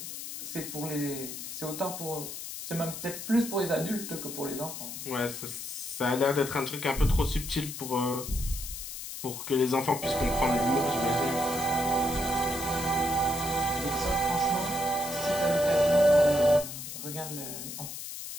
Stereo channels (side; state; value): left; noise; hiss, 8 dB below the sound